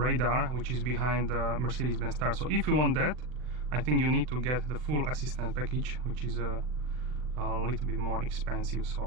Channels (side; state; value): left; late; 40 ms